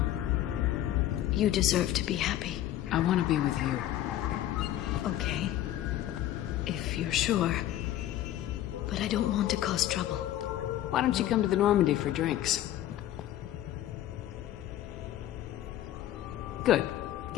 you deserve to be happy. I want to be with you. Okay. If you're sure. But I don't want to cause trouble. Why don't you come to the Normandy for drinks? Good.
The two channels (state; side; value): quieter; right; 12.9 dB